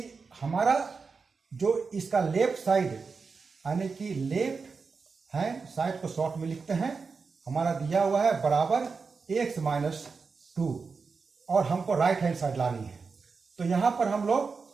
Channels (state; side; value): quieter; left; 4.9 dB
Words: हमारा जो इसका लेफ्ट साइड यानी कि लेफ्ट हैंड साइड को शॉर्ट में लिखते हैं, हमारा दिया हुआ है बराबर x माइनस 2 और हमको राइट हैंड साइड लानी है। तो यहां पर हम